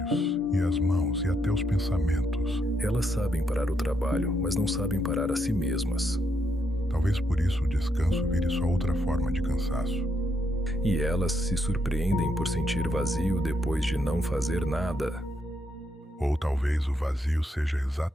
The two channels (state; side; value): normal; both; correlation 0.77